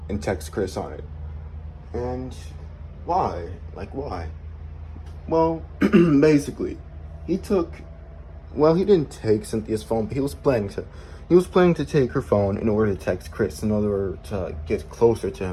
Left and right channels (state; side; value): identical; both; correlation 1.00